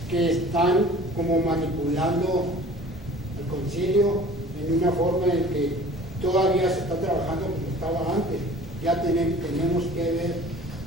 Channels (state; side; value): normal; both; correlation 0.46